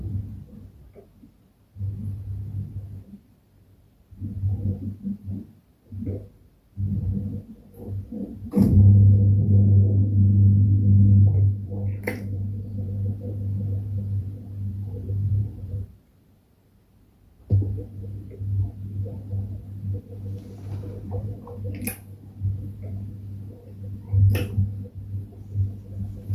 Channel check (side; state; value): both; identical; correlation 1.00